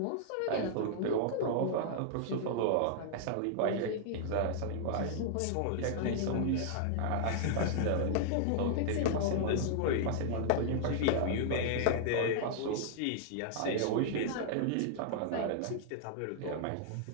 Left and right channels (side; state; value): both; different; correlation -0.01